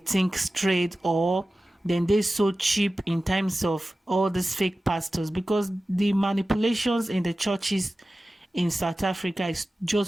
straight, or then they so cheap in terms of all these fake pastors, because the manipulations in the churches in South Africa is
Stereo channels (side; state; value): both; normal; correlation 0.95